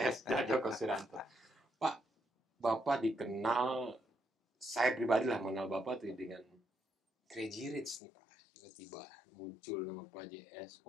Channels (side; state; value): right; drops out; at 8.0 s